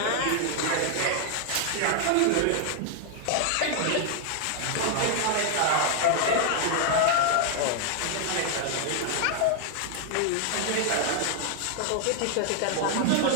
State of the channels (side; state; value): both; different; correlation 0.00